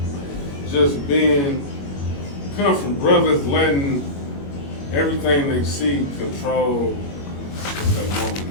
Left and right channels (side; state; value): right; late; 21 ms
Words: just come from brothers letting everything they see control what they want,